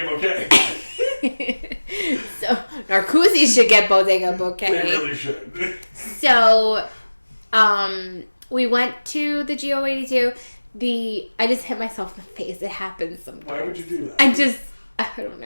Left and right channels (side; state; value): both; inverted; correlation -1.00